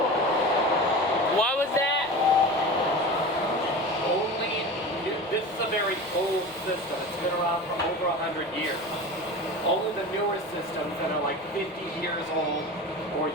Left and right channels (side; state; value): left; noise; rumble, 29 dB below the sound